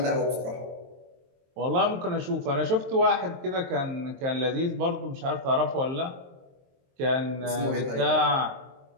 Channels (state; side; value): late; left; 23 ms